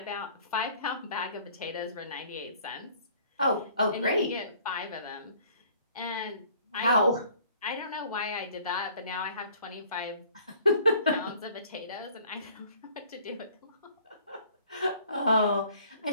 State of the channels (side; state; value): both; inverted; correlation -0.54